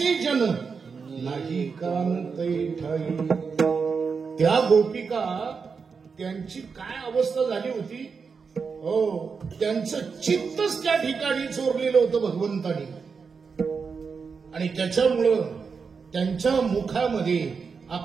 जन नाही कांतै ठाई. त्या गोपिका त्यांची काय अवस्था झाली होती, हो, त्यांचं चित्तच त्या ठिकाणी चोरलेलं होतं भगवंतानी. आणि त्याच्यामुळं त्यांच्या मुखामध्ये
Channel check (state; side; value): quieter; left; 5.4 dB